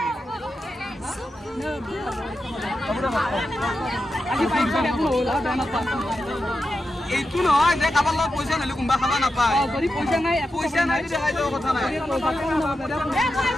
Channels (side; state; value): both; normal; correlation 0.89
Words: আজি পাইছো দেখো হল আর না পা এইটো নহয় যে কাবাৰ লগত পইচা নলে কোনবা খাবা না পায় যদি পইচা নাই দেখাই দাও কথা নাই